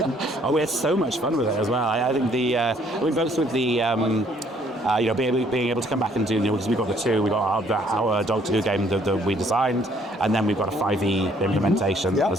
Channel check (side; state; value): both; normal; correlation 0.64